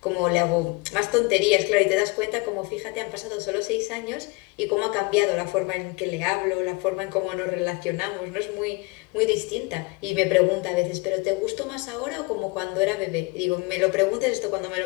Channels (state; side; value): quieter; right; 27.1 dB